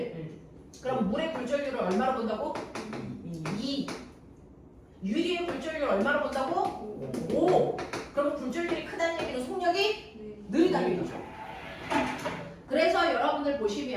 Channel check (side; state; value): both; identical; correlation 1.00